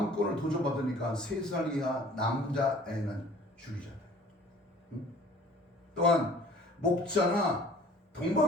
도전받으니까 3살 이하 남자애는 죽이잖아요. 또한 목자나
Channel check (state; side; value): normal; both; correlation 0.50